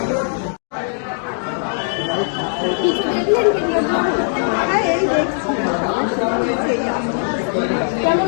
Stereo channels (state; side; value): silent; right; digital silence